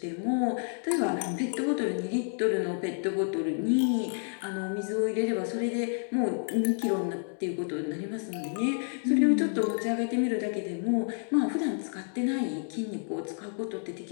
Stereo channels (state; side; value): silent; right; digital silence